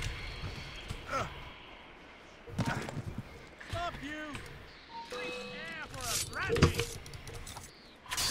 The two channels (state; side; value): identical; both; correlation 1.00